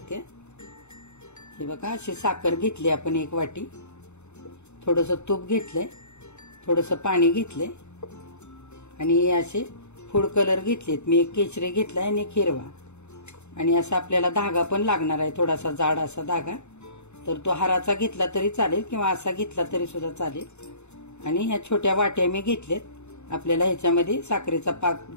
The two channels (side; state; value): right; late; 0.82 ms